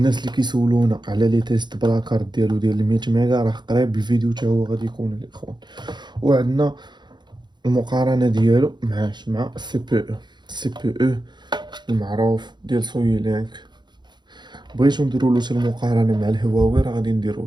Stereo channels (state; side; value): late; left; 0.21 ms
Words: اللي كيسولونا على لي تيست بلا كارت ديال 100 ميغا راه قريب الفيديو حتى هو غادي يكون الاخوان. وعندنا المقارنه ديالو مع السي بي او المعروف ديال سوي لينك. بغيتو نديرو له المقارنه مع الهواوي راه غادي نديرو